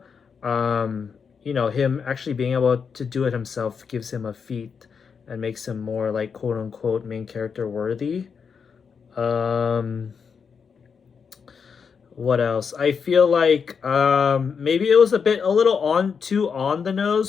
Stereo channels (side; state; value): right; quieter; 6.2 dB